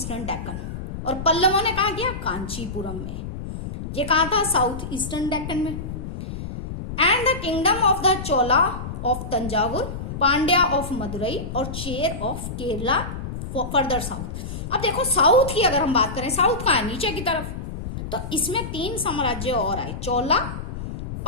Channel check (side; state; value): left; noise; rumble, 7 dB below the sound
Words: Deccan, और पल्लवों ने कहा किया? कांचीपुरम में। ये कहा था? साउथ ईस्टर्न डेक्कन में। And the kingdom of the Chola of Thanjavur, Pandya of Madurai और Chera of Kerala further south. अब देखो साउथ की अगर हम बात करें, साउथ का है नीचे की तरफ, तो इसमें 3 साम्राज्य और आए, चोला,